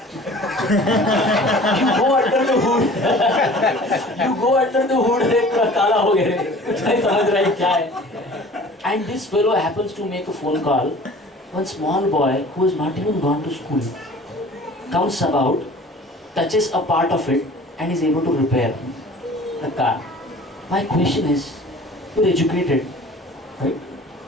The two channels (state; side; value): normal; both; correlation 0.46